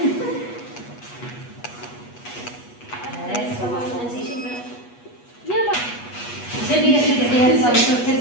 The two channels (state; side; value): late; right; 8.3 ms